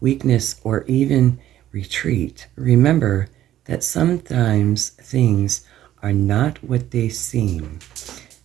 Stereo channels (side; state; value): left; quieter; 12.6 dB